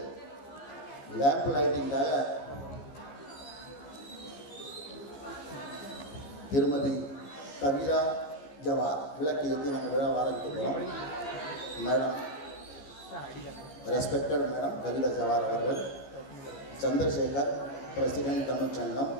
லேம்ப் லைட்டிங்காக திருமதி கவிதா ஜவார் விளக்கு ஏற்றி நம்ம விழாவை ஆரம்பிக்க போகிறோம். Madam, respected madam Kavita Jawar அவர்கள், Chandrasekhar president Tamil Sangam,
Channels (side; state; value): right; late; 14 ms